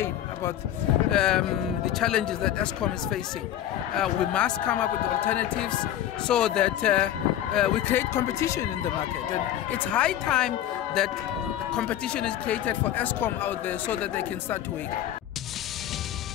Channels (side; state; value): right; quieter; 11.7 dB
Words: about the challenges that Eskom is facing. We must come up with alternatives so that we create competition in the market. And it's high time that competition is created for Eskom out there so that they can start to wake up.